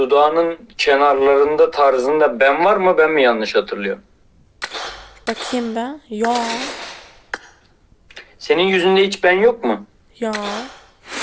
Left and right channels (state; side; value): identical; both; correlation 1.00